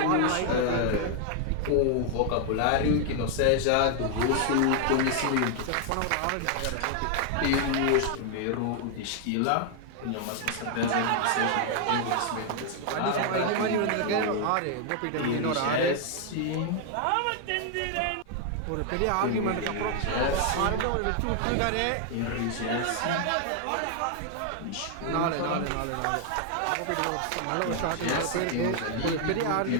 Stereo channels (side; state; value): both; different; correlation 0.00